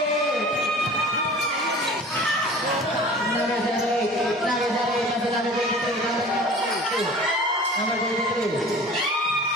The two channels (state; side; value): normal; both; correlation 0.42